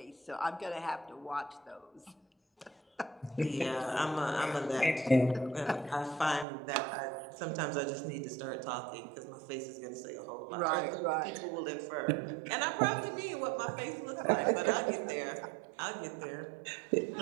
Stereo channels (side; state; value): left; drops out; at 6.5 s